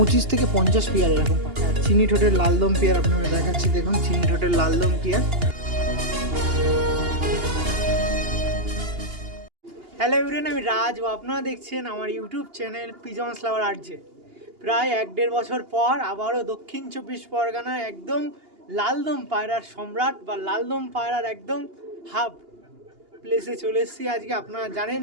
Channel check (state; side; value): late; left; 2.8 ms